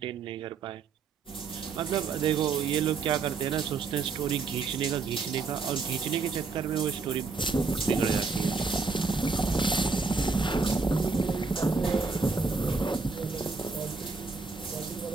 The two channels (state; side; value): quieter; left; 4.5 dB